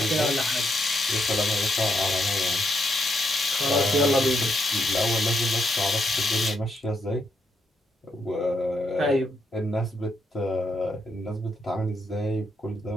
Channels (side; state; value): both; normal; correlation 0.78